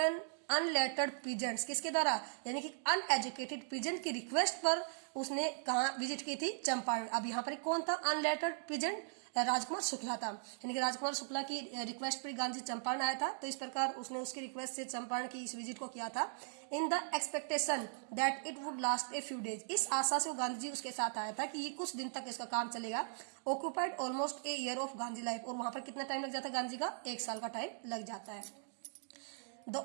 unlettered peasants, किसके द्वारा, यानी कि अनएजुकेटेड पीजेंट की रिक्वेस्ट पर उसने कहा विजिट की थी चंपारण। अब यहाँ पर कौन था अनलेटर्ड पीजेंट, राजकुमार शुक्ला था, यानी कि राजकुमार शुक्ला की रिक्वेस्ट पर गांधी चंपारण आया था, तो इस प्रकार उसने उसकी रिक्वेस्ट से चंपारण की इस विजिट को किया था। In the expectation that it would last a few days, इस आशा से वो गांधी जी उसके साथ आया था कि ये कुछ दिन तक इसका काम चलेगा। Occupied almost a year of Gandhi life, और वहां पर कितना टाइम लग जाता है गांधी जी का, 1 साल का टाइम लग जाता है। The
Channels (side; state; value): left; silent; digital silence